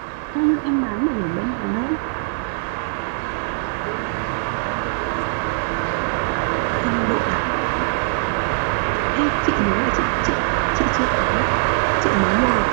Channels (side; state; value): left; silent; 65 dB below the other